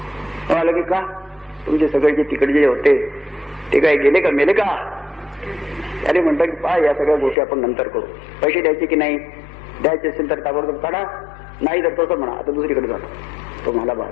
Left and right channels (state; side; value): drops out; right; at 7.4 s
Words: म्हणाला की का, तुमचे सगळे जे तिकडे जे होते ते काय गेले का, मेले का? अरे म्हणतात की पहा, या सगळ्या गोष्टी आपण नंतर करू. पैसे द्यायचे की नाही, द्यायचे असेल तर ताबडतोब काढा, नाही तर तसं म्हणा आता दुसरीकडे जाणं. तो मला